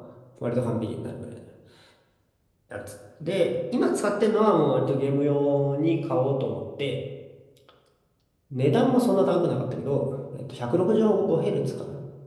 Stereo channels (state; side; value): identical; both; correlation 1.00